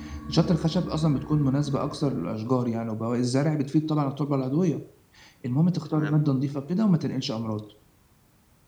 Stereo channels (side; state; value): both; identical; correlation 1.00